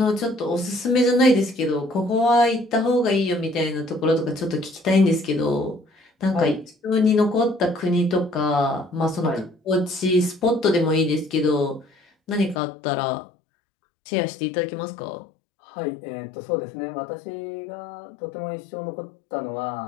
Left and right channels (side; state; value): right; drops out; at 12.6 s